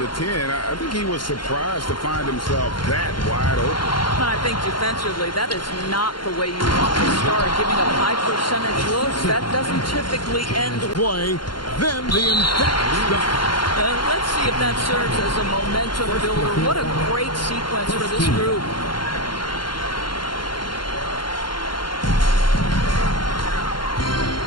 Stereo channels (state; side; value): late; right; 0.72 ms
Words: 10, I think he was surprised to find himself that wide open. I think defensively, that is not the way you want to start. Giving up high percentage looks, that doesn't typically end Play, then the emphatic stop. Let's see if that serves as a momentum builder. What a great sequence for this group.